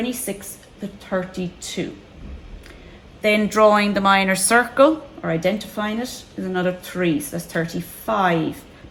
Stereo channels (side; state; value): both; identical; correlation 1.00